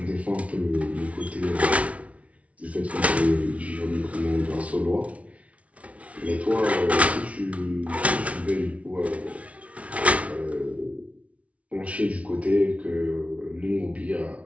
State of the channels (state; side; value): late; left; 0.065 ms